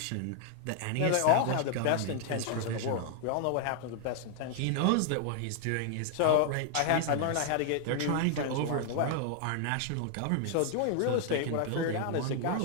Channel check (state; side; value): different; both; correlation 0.00